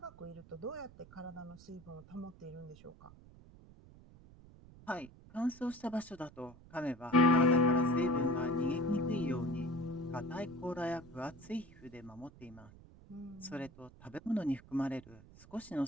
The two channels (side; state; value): right; noise; rumble, 21 dB below the sound